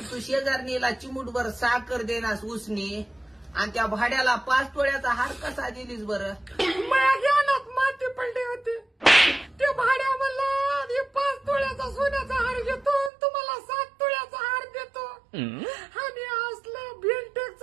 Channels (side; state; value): left; drops out; at 13.1 s